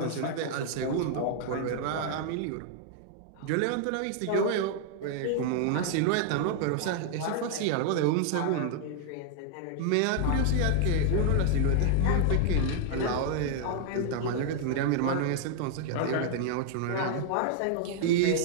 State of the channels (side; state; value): both; different; correlation -0.01